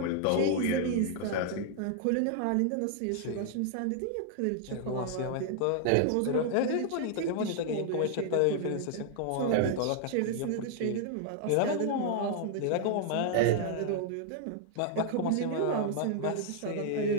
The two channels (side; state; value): both; different; correlation 0.00